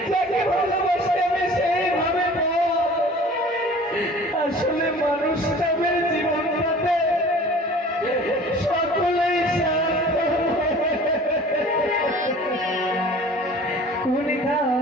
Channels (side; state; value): both; normal; correlation 0.45